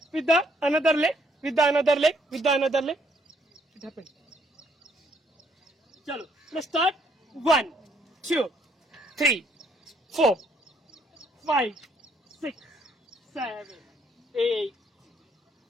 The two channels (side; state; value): both; normal; correlation 0.69